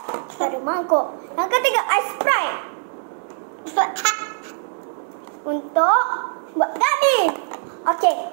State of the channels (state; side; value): silent; left; digital silence